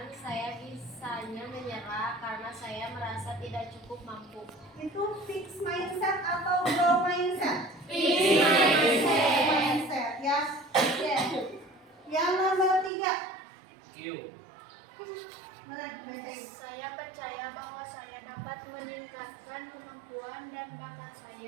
saya bisanya menyerah karena saya merasa tidak cukup mampu. Itu fix mindset atau grow mindset? Fix Mindset ya. Oke. Yang nomor 3. Q. Benar, bacain. Saya percaya bahwa saya dapat meningkatkan kemampuan dan bakat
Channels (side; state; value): left; drops out; at 12.9 s